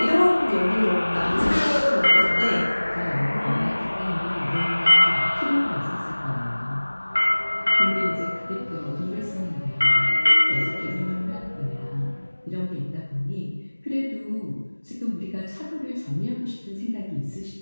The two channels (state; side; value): inverted; both; correlation -1.00